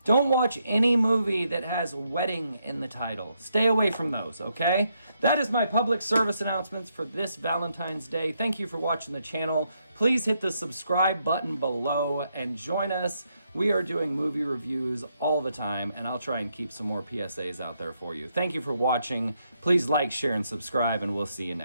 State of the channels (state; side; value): inverted; both; correlation -0.78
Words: don't watch any movie that has wedding in the title. Stay away from those, okay? That is my public service announcements for this Valentine's Day. Thank you for watching the channel. Please hit the subscribe button below and join us. We are doing movie reviews all the time, and I'll try and keep some more PSAs out there for you. Thank you for watching. Please like, share, and subscribe, and we'll see you